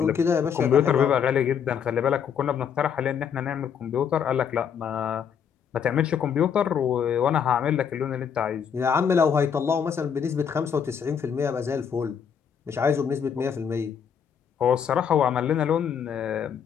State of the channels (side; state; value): right; quieter; 7.6 dB